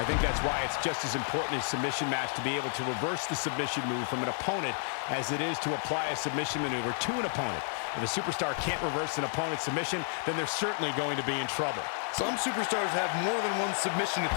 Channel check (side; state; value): right; silent; 57 dB below the other